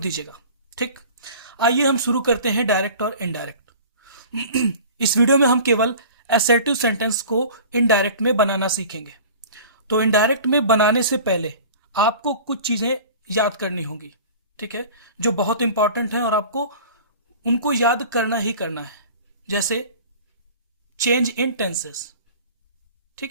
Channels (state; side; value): inverted; both; correlation -0.42